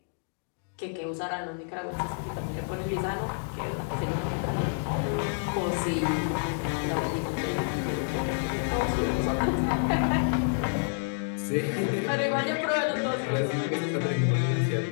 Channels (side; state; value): right; silent; digital silence